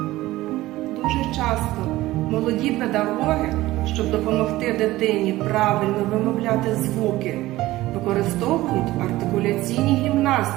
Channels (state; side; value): quieter; left; 17.2 dB